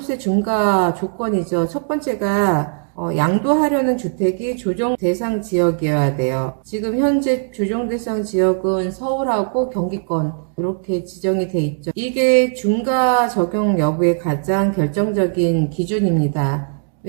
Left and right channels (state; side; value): silent; left; 67 dB below the other